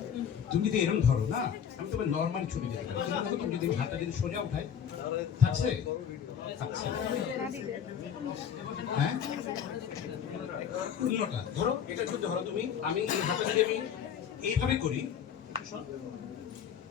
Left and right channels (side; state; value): right; quieter; 8.3 dB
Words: তুমি যদি এরকম ধরো না আমি তোমার নর্মাল ছুটি দিতে পারি কিন্তু তুমি যদি হাতটা যদি সোজা উঠাই থাকছে থাকছে হ্যাঁ উল্টোটা ধরো এটা যদি ধরো তুমি আমি এই হাতটা যদি আমি এইভাবে করি